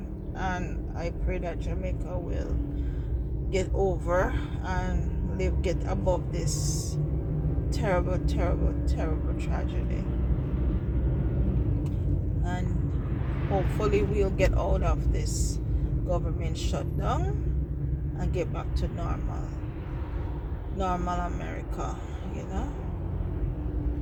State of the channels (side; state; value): both; identical; correlation 1.00